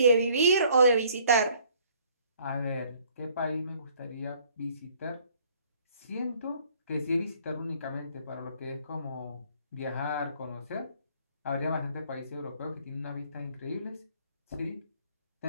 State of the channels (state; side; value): inverted; both; correlation -0.60